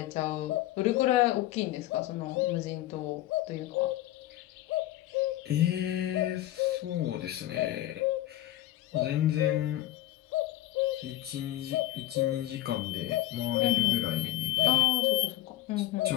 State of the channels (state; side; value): quieter; right; 15.2 dB